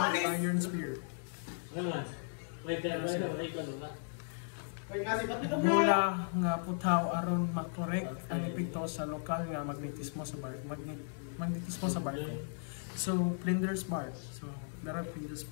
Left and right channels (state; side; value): silent; right; digital silence